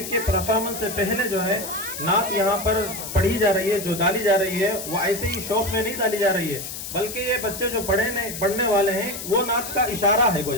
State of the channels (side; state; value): left; noise; hiss, 8 dB below the sound